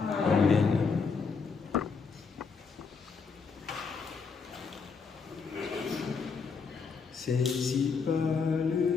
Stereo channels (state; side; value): quieter; right; 5.2 dB